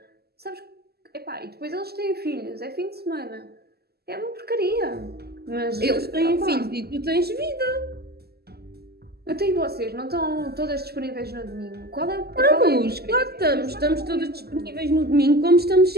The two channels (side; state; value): left; late; 0.46 ms